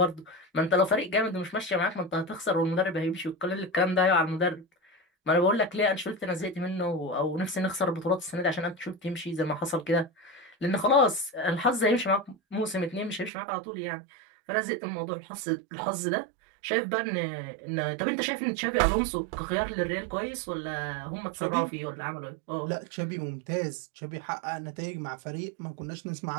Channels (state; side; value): drops out; left; at 13.3 s